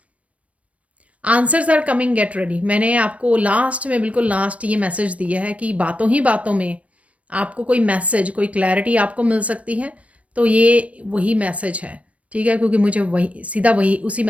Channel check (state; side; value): late; left; 0.065 ms